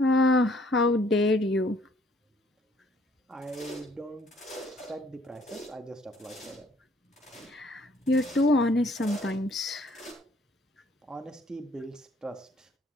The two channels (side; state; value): both; normal; correlation 0.62